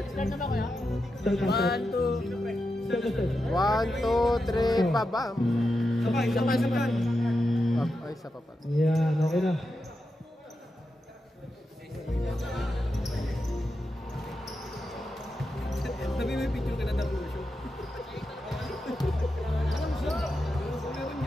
Start na ba kaya? Start. 1, 2, 3, baba. Sabay. Ay, sa papa. Yan, okay na. Sabi may picture ka na ng show. Alam siya. Meron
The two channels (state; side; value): normal; both; correlation 0.88